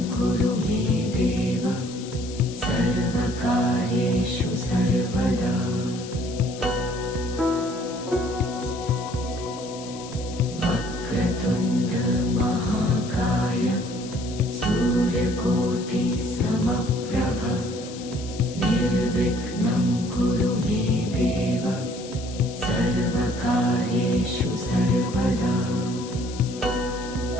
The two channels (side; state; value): left; noise; hiss, 15 dB below the sound